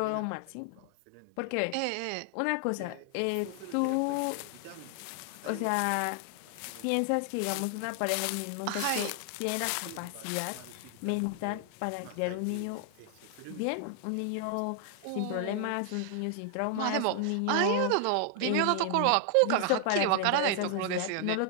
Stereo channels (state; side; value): different; both; correlation 0.00